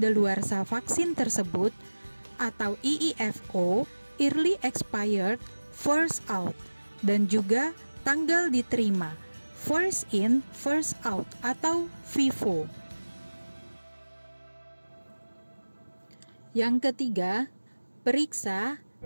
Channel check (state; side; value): inverted; both; correlation -1.00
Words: vaksin tersebut atau EEFO, Early Expired, First Out, dan juga tanggal diterima, First In, First Out atau FIFO. Yang ketiga, periksa